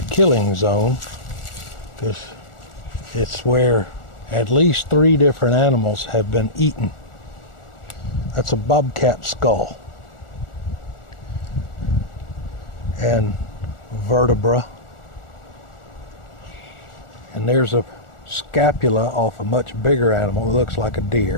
a killing zone, because it's where at least 3 different animals have been eaten. That's a bobcat skull and vertebra, and there's a scapula off a much bigger animal. It looks like a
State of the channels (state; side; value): late; right; 1.4 ms